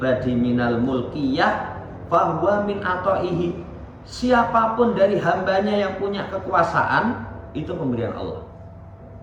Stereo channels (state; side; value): identical; both; correlation 1.00